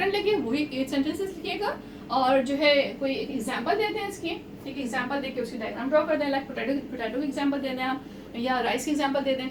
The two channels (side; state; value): both; identical; correlation 1.00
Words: लगे वही 8 सेंटेंसेस लिखिएगा. और जो है कोई एक एग्जाम्पल देते हैं इसकी. ठीक है. एग्जाम्पल देके उसकी डायग्राम ड्रॉ कर दें. लाइक पोटैटो की एग्जाम्पल दे दें आप, या राइस की एग्जाम्पल दे दें.